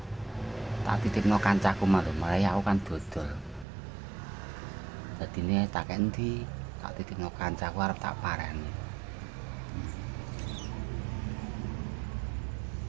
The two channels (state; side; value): drops out; left; at 3.7 s